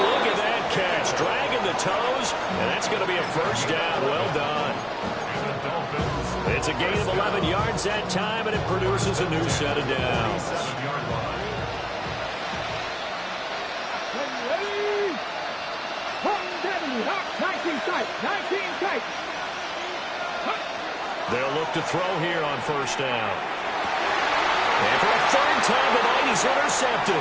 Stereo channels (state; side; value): identical; both; correlation 1.00